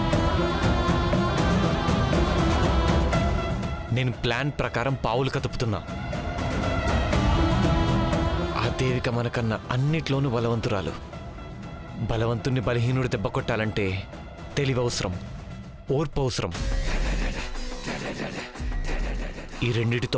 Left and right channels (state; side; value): identical; both; correlation 1.00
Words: నేను ప్లాన్ ప్రకారం పావులు కదుపుతున్నా. ఆ దేవిక మనకన్నా అన్నిట్లోనూ బలవంతురాలు. బలవంతుణ్ణి బలహీనుడు దెబ్బ కొట్టాలంటే తెలివి అవసరం, ఓర్పు అవసరం. ఈ రెండిటితో